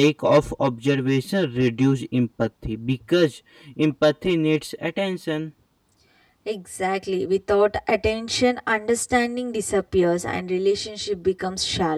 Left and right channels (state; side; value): identical; both; correlation 1.00